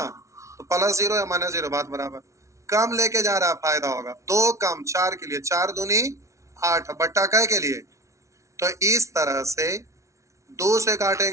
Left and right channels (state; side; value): late; left; 0.14 ms